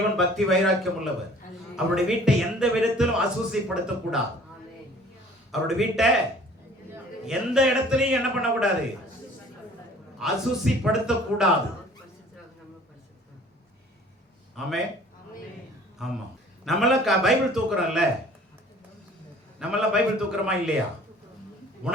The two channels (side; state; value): both; normal; correlation 0.51